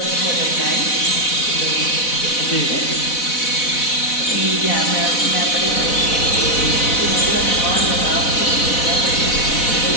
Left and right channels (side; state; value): right; late; 4.1 ms